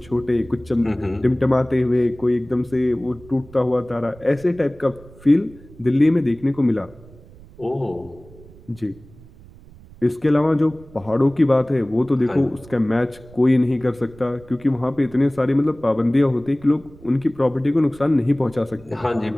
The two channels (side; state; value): right; noise; rumble, 22 dB below the sound